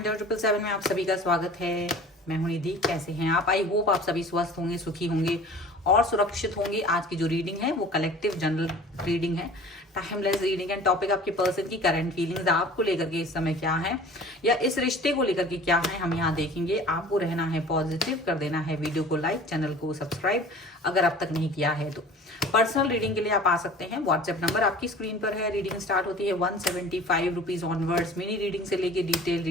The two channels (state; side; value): normal; both; correlation 0.44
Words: 777 में आप सभी का स्वागत है। मैं हूं निधि। कैसे हैं आप? आई होप आप सभी स्वस्थ होंगे, सुखी होंगे और सुरक्षित होंगे। आज की जो रीडिंग है वो कलेक्टिव जनरल रीडिंग है, टाइमलेस रीडिंग है। टॉपिक आपके पर्सन की करंट फीलिंग्स आपको लेकर के इस समय क्या है, या इस रिश्ते को लेकर के क्या है, हम यहाँ देखेंगे। आपको रहना है पॉजिटिव, कर देना है वीडियो को लाइक, चैनल को सब्सक्राइब अगर अब तक नहीं किया है तो। पर्सनल रीडिंग के लिए आप आ सकते हैं। व्हाट्सएप नंबर आपकी स्क्रीन पर है। रीडिंग स्टार्ट होती है 175 रुपीज ऑनवर्ड्स। मिनी रीडिंग से लेके डिटेल